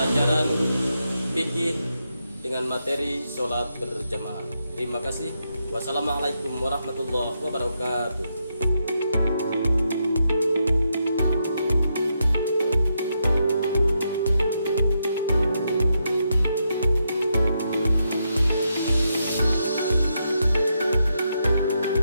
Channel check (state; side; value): inverted; both; correlation -0.82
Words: fikih dengan materi sholat berjamaah. Terima kasih. Wassalamualaikum warahmatullahi wabarakatuh.